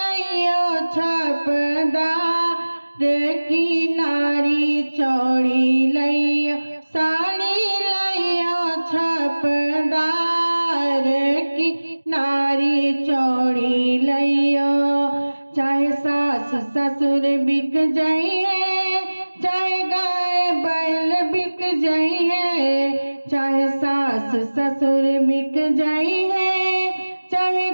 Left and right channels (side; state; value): both; inverted; correlation -1.00